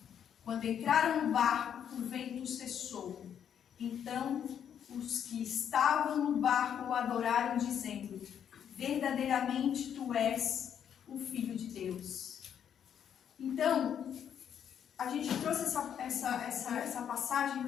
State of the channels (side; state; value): right; quieter; 8.8 dB